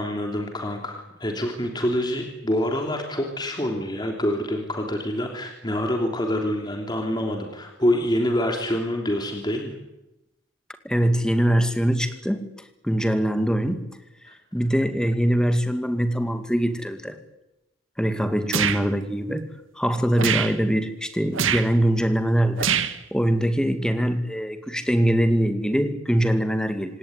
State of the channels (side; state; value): both; normal; correlation 0.84